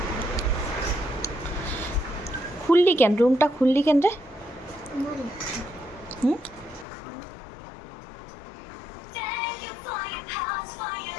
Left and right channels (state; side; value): drops out; right; at 6.9 s